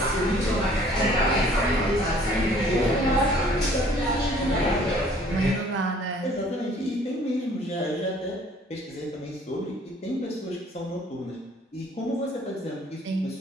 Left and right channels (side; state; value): both; normal; correlation 0.56